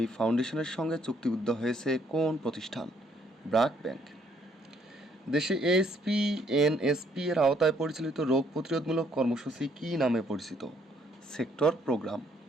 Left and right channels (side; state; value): both; normal; correlation 0.67